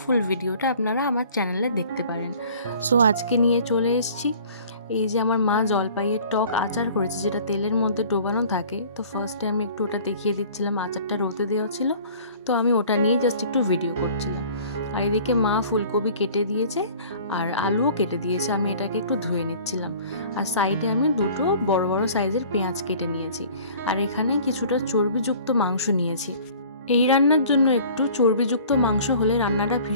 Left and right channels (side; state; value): both; inverted; correlation -0.48